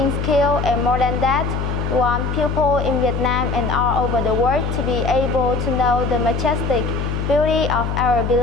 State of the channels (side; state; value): left; noise; hum, 2 dB below the sound